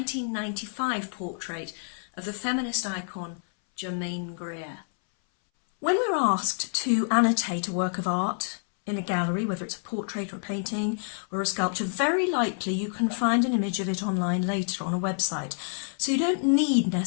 portrait of the feminist icon Germaine Greer. When we're asked to annotate a work of art in a gallery, whether it's a portrait or a painting or a sculpture, very likely you can find an image of it online later on a website. So you don't need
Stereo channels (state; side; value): silent; right; 60 dB below the other